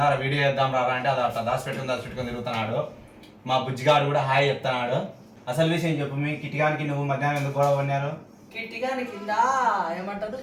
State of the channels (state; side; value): identical; both; correlation 1.00